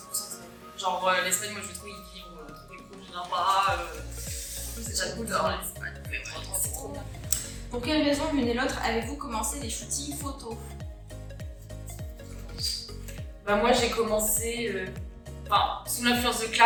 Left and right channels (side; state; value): both; identical; correlation 1.00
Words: Genre l'Espagne, moi je veux trop y vivre, trop des cool, je viens pas. C'est j'adore l'Espagne, c'est trop bien. Pour quelle raison l'une et l'autre avez-vous commencé les shootings photos? Bah moi j'ai commencé sous l'influence de